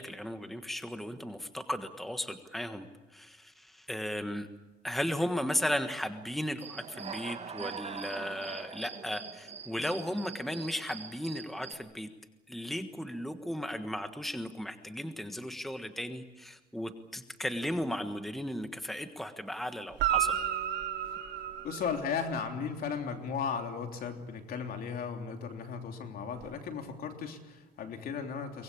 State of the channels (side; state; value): both; normal; correlation 0.56